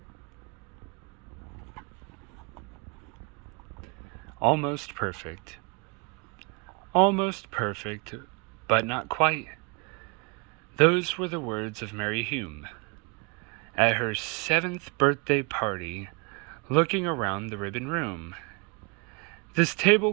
Almost perfect. Almost perfect, but not quite. Those were the words of Mary Hume at her 7th birthday party, looking around the ribbon room. This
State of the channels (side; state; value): left; quieter; 32.6 dB